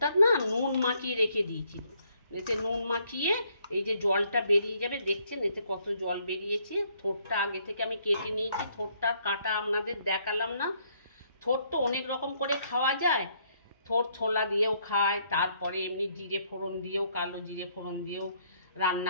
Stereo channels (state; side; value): inverted; both; correlation -0.69